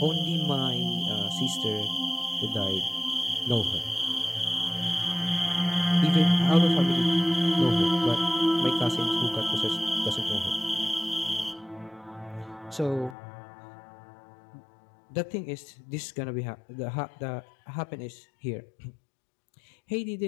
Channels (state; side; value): drops out; right; at 13.2 s